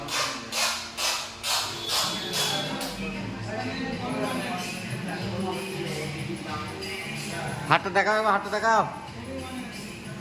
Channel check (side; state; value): both; identical; correlation 1.00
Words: হাতটা দেখাও, হাতটা দেখাও।